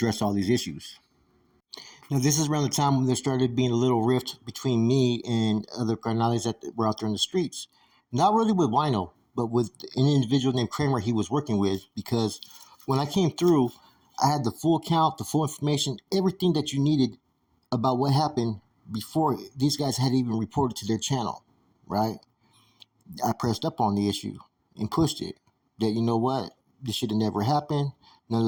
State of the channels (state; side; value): identical; both; correlation 1.00